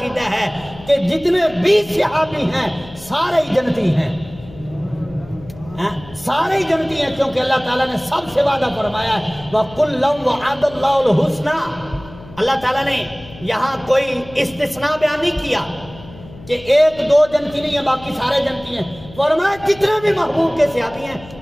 ہے کہ جتنے بھی صحابی ہیں سارے ہی جنتی ہیں، سارے ہی جنتی ہیں، کیونکہ اللہ تعالیٰ نے سب سے وعدہ فرمایا ہے وَكُلًّا وَعَدَ اللَّهُ الْحُسْنَى۔ اللہ تعالیٰ نے یہاں کوئی استثناء بیان نہیں کیا کہ ایک دو جنتی نہیں ہے باقی سارے جنتی ہیں، فرمایا جتنے بھی محبوب کے صحابی ہیں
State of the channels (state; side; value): noise; left; hum, 19 dB below the sound